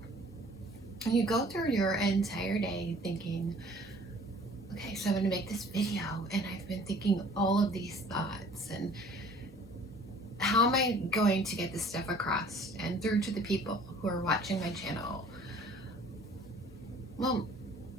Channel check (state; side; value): normal; both; correlation 0.52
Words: you go through your entire day thinking, okay, so I'm going to make this video, and I've been thinking all of these thoughts, and how am I going to get this stuff across and through to the people who are watching my channel? Well,